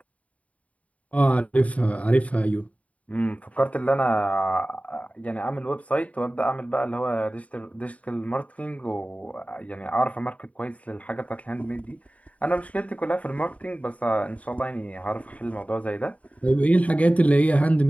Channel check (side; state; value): right; late; 0.068 ms